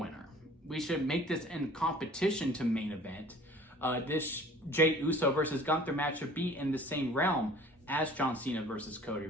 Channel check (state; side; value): normal; both; correlation 0.49